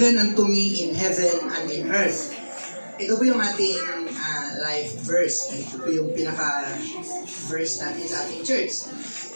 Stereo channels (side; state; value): both; inverted; correlation -1.00